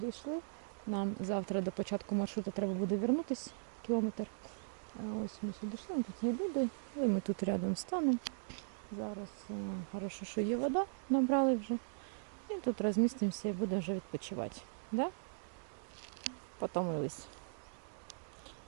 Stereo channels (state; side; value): silent; left; digital silence